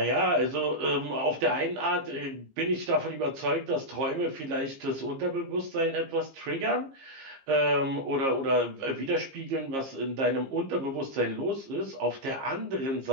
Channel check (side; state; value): left; late; 15 ms